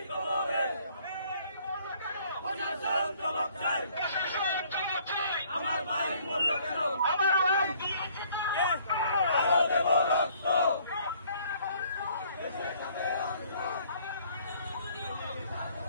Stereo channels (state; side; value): inverted; both; correlation -0.60